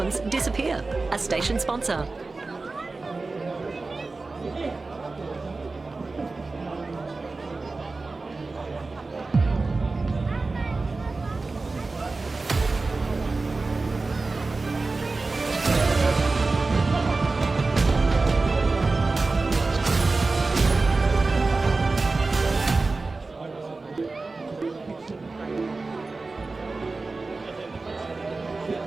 disappear. A station sponsor.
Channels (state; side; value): quieter; left; 3.6 dB